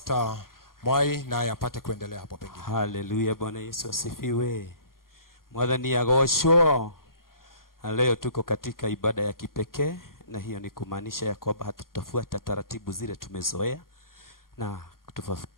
Mwai naye apate kuendelea hapo pengine. Hallelujah, Bwana Yesu asifiwe. Mwathani agoshwo. Leo tuko katika ibada ya kipekee na hiyo ni kumaanisha ya kwamba hatutafuata taratibu zile tumezoea, na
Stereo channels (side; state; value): right; late; 0.92 ms